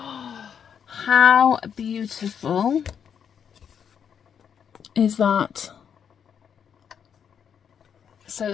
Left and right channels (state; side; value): quieter; right; 7.8 dB